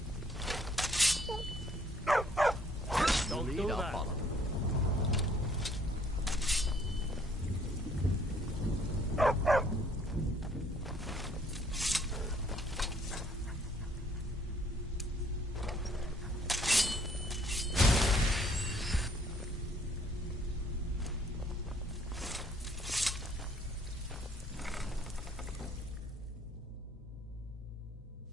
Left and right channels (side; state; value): both; normal; correlation 0.62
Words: Don't do that.